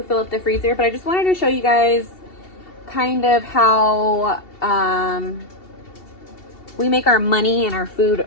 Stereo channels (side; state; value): right; late; 2.7 ms